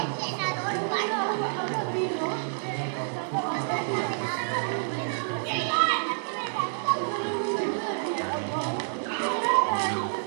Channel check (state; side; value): silent; left; digital silence